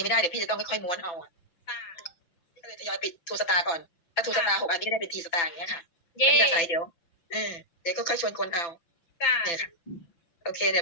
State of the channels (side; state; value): right; late; 5.9 ms